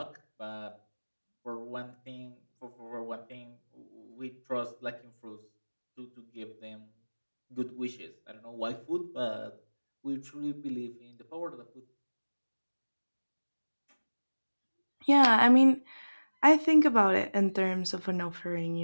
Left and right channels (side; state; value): both; inverted; correlation -1.00